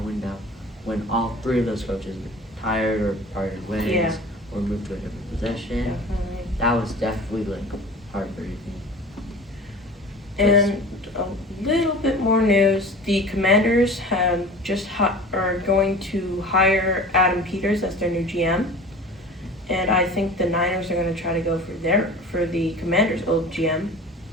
when all three of those coaches retired or parted ways Yeah. or moved to a different position. Definitely. That was definitely like heartbreaking. And a little bit more news. The Commanders have are going to hire Adam Peters as their new GM. And I think the Niners are going to try to go for the Commanders' old GM.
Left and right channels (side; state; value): both; normal; correlation 0.40